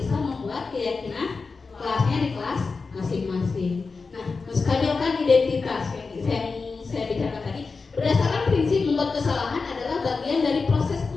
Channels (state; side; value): quieter; right; 4.4 dB